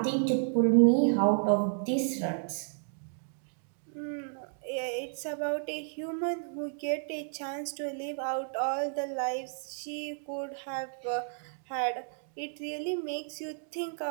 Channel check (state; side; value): silent; left; digital silence